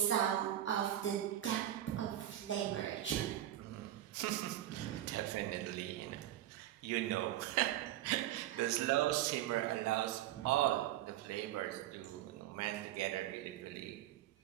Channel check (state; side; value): quieter; left; 12.8 dB